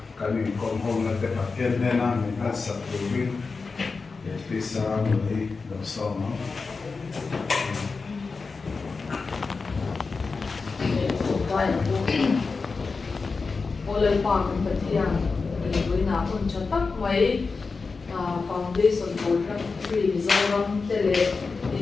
cái mình còn hôm nay để phát hiện nên là mình đã sắp được biết để đi xa người đầu sau nó Oleh Pak Kementerian Lingkungan pun cetak mai foundation for Drug-Free Mizoram tele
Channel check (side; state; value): right; quieter; 4.4 dB